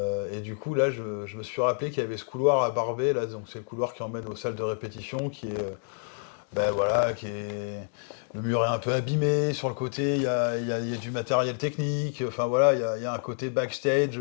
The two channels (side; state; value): right; silent; 58 dB below the other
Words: du coup, là, je me suis rappelé qu'il y avait ce couloir à Barbès, là, donc c'est le couloir qui emmène aux salles de répétition, qui est... Le mur est un peu abîmé, sur le côté, il y a du matériel technique, enfin voilà, il y a un côté backstage,